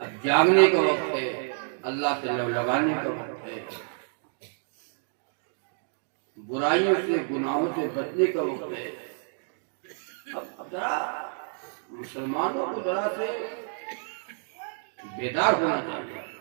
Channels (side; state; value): left; silent; digital silence